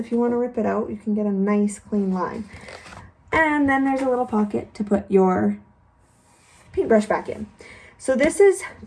you want to rip it out, you can get a nice clean line. And then there's a little pocket to put your paintbrush back in. So this is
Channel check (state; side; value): identical; both; correlation 1.00